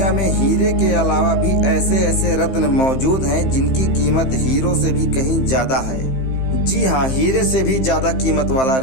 में हीरे के अलावा भी ऐसे ऐसे रत्न मौजूद हैं जिनकी कीमत हीरो से भी कहीं ज्यादा है। जी हाँ, हीरे से भी ज्यादा कीमत वाला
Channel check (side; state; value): right; late; 15 ms